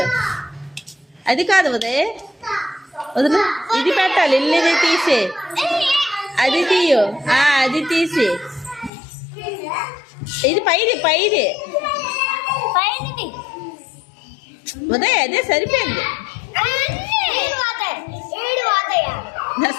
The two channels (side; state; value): right; drops out; at 8.9 s